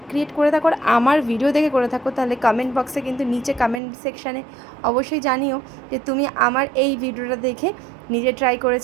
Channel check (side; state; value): left; drops out; at 3.8 s